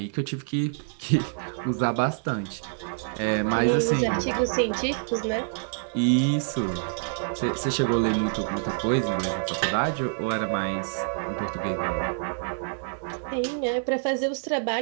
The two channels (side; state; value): left; silent; digital silence